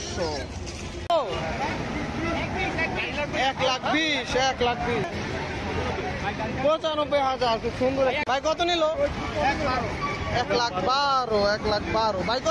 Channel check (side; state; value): both; identical; correlation 1.00